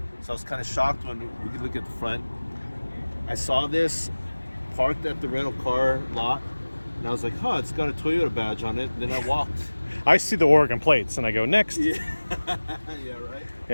so I was kind of shocked when we could look at the front. I saw this parked at the rental car lot, and I was like, it's got a Toyota badge on it. And then I walked. I see the Oregon plates and I go, next. Yeah, yeah, right?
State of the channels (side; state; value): both; inverted; correlation -1.00